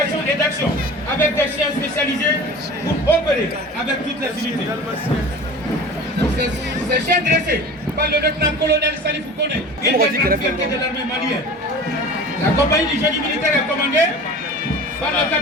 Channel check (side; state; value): both; normal; correlation 0.38